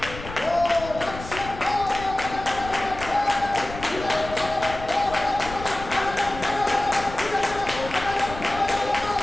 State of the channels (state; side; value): noise; left; rumble, 12 dB below the sound